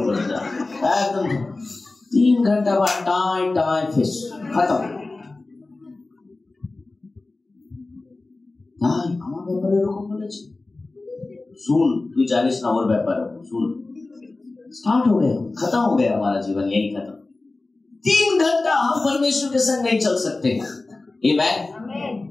বলে যান, একদম 3 ঘন্টা বা টাই টাই ফেস খতম। তাই আমার ব্যাপারে এরকম বলেছে, सुन तू जानिस ना और व्यापार सुन, स्टार्ट हो गया, खत्म हो गया हमारा जीवन, यही खत्म। 3 घंटा हम परमेश्वर के संग नहीं चल सकते। आमीन।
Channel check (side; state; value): right; quieter; 3.3 dB